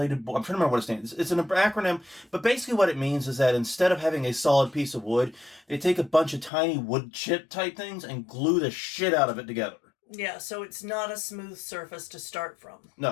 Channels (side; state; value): right; drops out; at 6.5 s